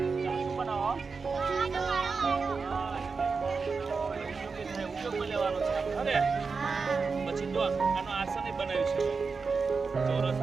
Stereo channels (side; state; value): left; quieter; 4.8 dB